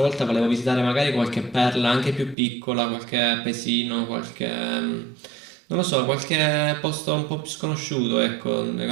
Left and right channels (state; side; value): drops out; left; at 2.4 s